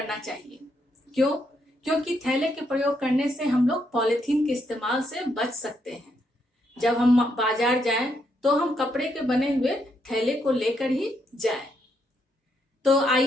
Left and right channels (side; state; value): both; normal; correlation 0.77